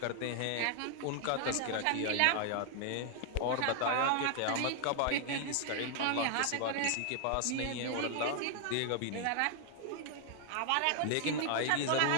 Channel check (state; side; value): different; both; correlation 0.00